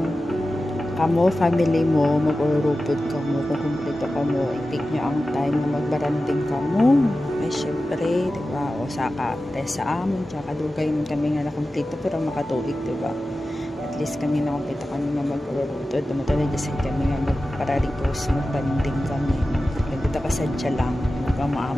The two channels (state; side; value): normal; both; correlation 0.94